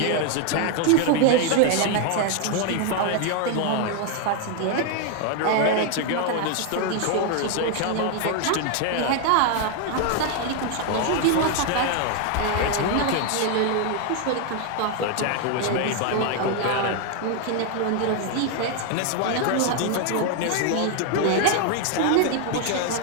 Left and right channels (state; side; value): different; both; correlation 0.00